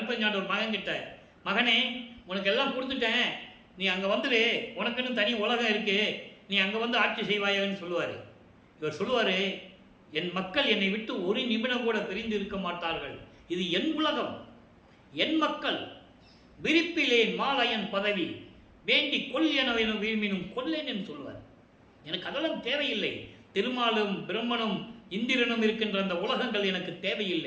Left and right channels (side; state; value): both; identical; correlation 1.00